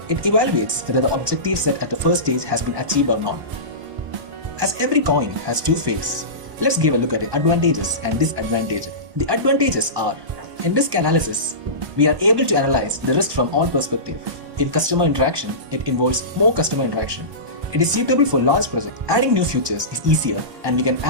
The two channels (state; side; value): late; left; 1.1 ms